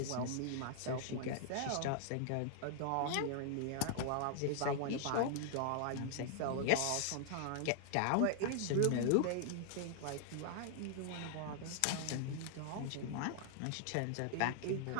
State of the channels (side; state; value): both; different; correlation -0.01